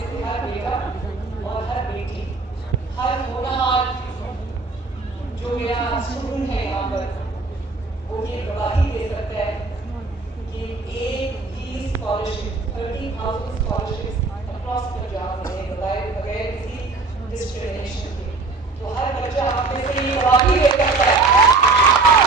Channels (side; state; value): left; quieter; 3.8 dB